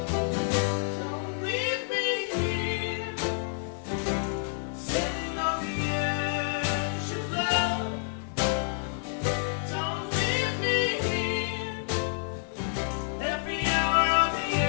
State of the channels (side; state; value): right; silent; digital silence